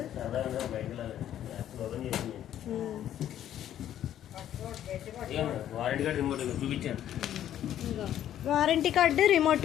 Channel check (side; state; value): right; quieter; 11.2 dB